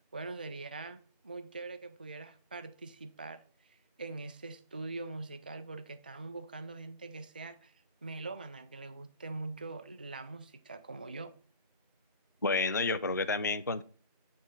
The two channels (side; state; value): both; inverted; correlation -0.36